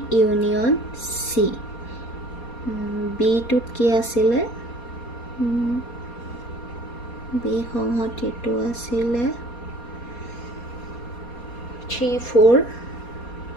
union C B টুত কি আছিলে B সংহতিটো আছিলে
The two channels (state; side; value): late; right; 4.2 ms